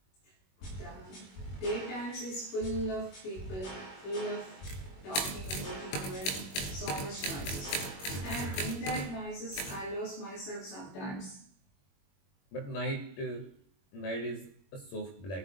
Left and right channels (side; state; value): right; late; 21 ms